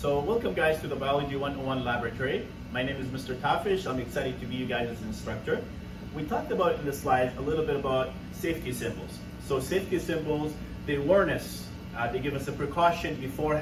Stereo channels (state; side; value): identical; both; correlation 1.00